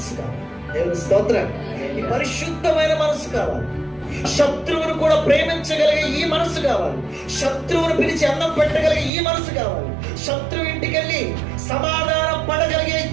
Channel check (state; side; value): drops out; left; at 9.1 s